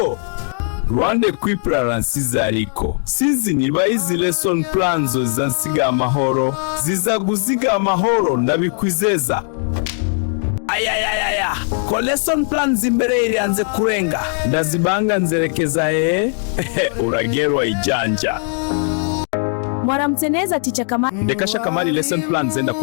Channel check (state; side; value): silent; right; 57 dB below the other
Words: Rwanda Equiplans ariko sizi niba izi lesson plans zizasiga amahoro, zizaguziga amahoro ndabikwizeza. Ayayayaya, ko lesson plans imbere irianze kurenga ndazibanga nzerekeza uragerwa ijanja. Mwaramutse neza teacher Kamari. Ndekasha Kamari lesson plans zenda